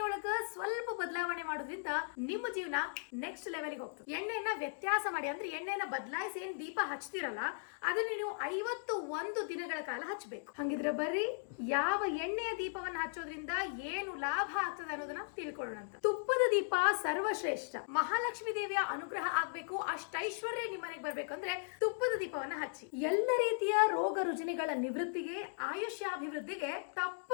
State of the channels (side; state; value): right; silent; digital silence